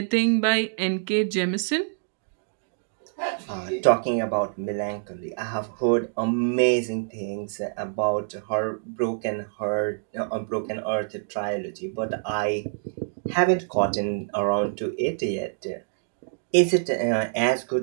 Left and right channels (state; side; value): silent; left; digital silence